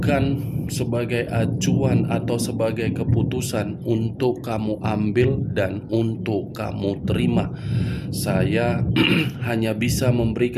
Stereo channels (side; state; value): both; identical; correlation 1.00